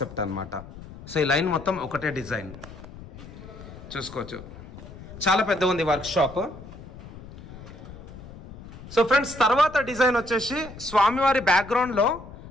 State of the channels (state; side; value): noise; left; rumble, 15 dB below the sound